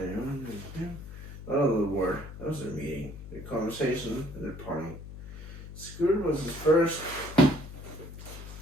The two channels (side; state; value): left; noise; hum, 12 dB below the sound